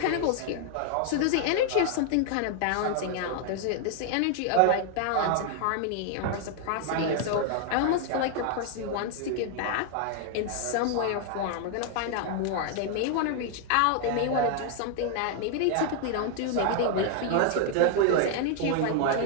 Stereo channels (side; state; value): both; different; correlation 0.00